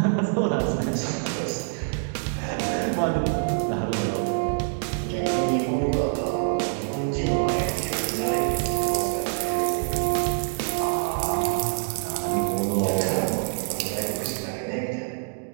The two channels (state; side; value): silent; left; digital silence